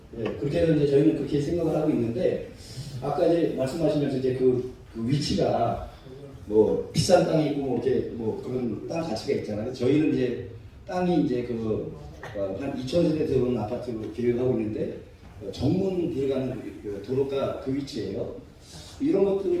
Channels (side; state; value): both; identical; correlation 1.00